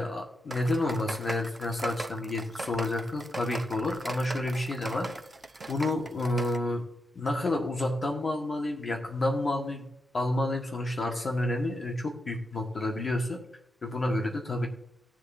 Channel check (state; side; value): normal; both; correlation 0.85